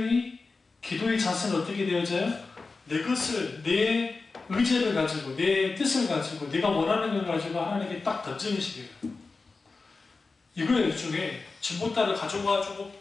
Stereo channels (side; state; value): right; quieter; 4.0 dB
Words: 기도의 자세는 어떻게 되어져요? 내 것을, 내 의지를 가지고, 내 뜻을 가지고, 내가 원하는 걸 가지고 하나님께 딱 던지는 식이에요. 이거예요. 일종의 진보따를 가져가지고